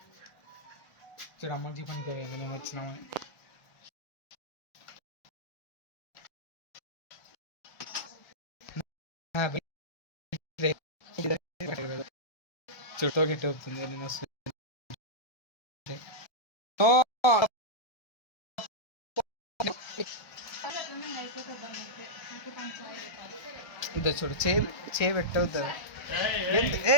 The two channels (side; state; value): right; late; 1.2 ms